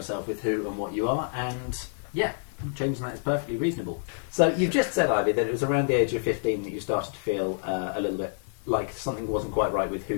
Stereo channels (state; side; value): silent; right; digital silence